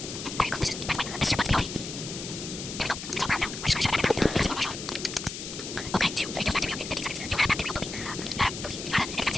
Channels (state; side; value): noise; left; hiss, 8 dB below the sound